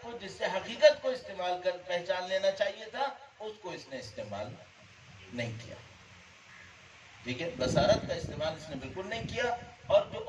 کو جس سے حقیقت کو استعمال کر پہچان لینا چاہیے تھا اس کو اس نے استعمال نہیں کیا. ٹھیک ہے، بصارت کا استعمال اس نے بالکل نہیں کیا، اور جو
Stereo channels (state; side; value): identical; both; correlation 1.00